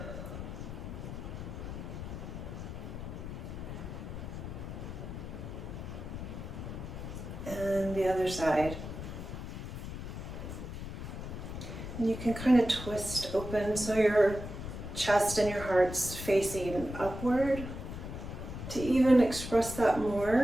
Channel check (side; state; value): left; noise; rumble, 8 dB below the sound